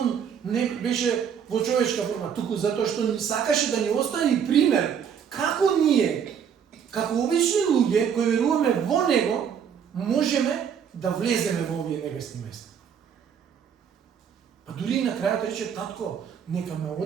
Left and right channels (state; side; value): quieter; left; 7.8 dB